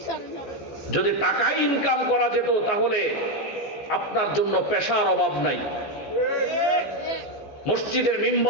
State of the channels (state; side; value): late; right; 14 ms